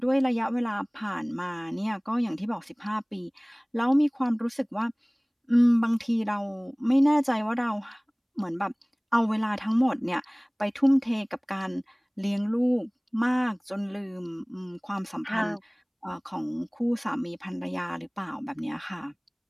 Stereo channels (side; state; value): both; identical; correlation 1.00